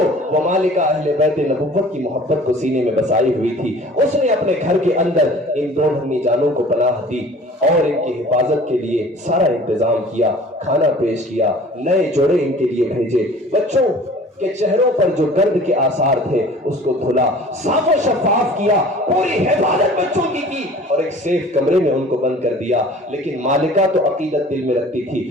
वो मालिका अहले बैत नबुव्वत की मोहब्बत को सीने में बसाई हुई थी, उसने अपने घर के अंदर इन दो नन्ही जानों को पनाह दी और इनकी हिफाजत के लिए सारा इंतजाम किया, खाना पेश किया, नए जोड़े इनके लिए भेजे। बच्चों के चेहरों पर जो दर्द के आसार थे उसको धुला, साफ और शफाफ किया, पूरी हिफाजत बच्चों की और एक सेफ कमरे में उनको बंद कर दिया। लेकिन मालिका तो अकीदत दिल में रखती थी,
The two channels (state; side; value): normal; both; correlation 0.46